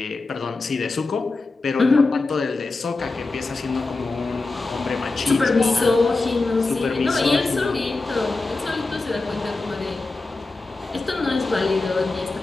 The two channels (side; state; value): right; quieter; 3.5 dB